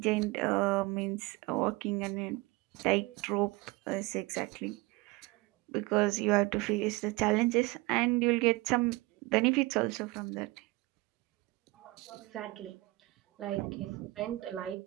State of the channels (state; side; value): quieter; left; 22.1 dB